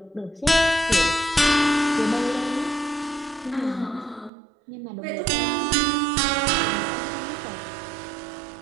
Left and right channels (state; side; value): drops out; left; at 4.3 s